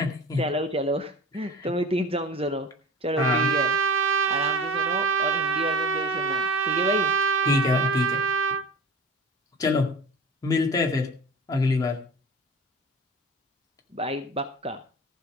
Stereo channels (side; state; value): both; normal; correlation 0.36